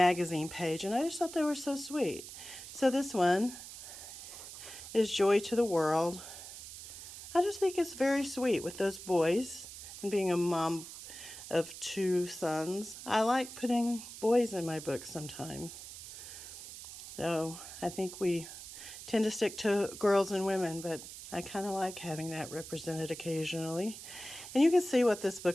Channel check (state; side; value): noise; right; hiss, 12 dB below the sound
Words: page, and I just thought they were so sweet. So this one is Joy to the World. I just think it's very sweet with those boys, and being a mom of 2 sons, I like putting boys in my books sometimes. So I think we tend to stick to girls and women, but I kind of like having that represented occasionally. And you can see what this